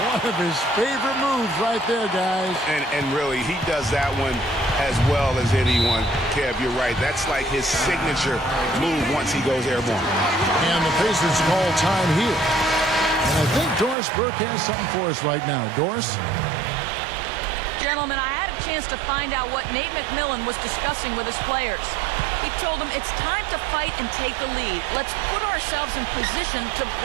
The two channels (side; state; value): left; drops out; at 14.0 s